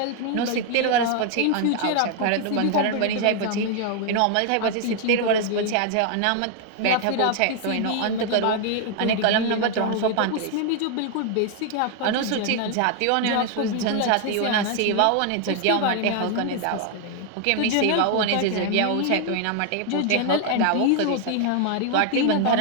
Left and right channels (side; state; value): both; different; correlation 0.00